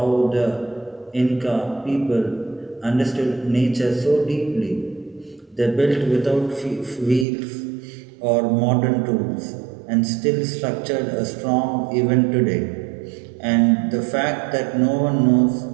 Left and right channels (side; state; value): left; drops out; at 7.2 s